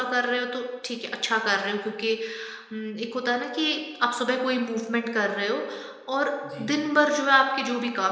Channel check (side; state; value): both; identical; correlation 1.00